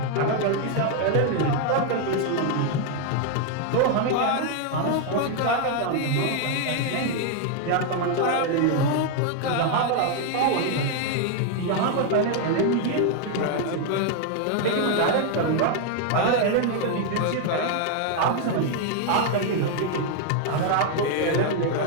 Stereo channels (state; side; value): different; both; correlation 0.00